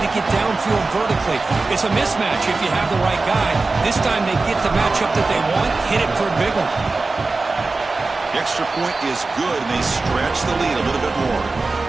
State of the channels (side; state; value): left; quieter; 3.6 dB